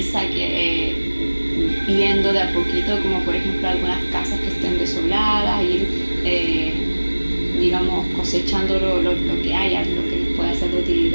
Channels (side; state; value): both; inverted; correlation -1.00